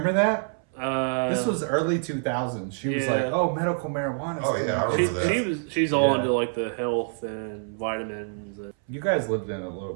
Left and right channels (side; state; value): left; silent; 61 dB below the other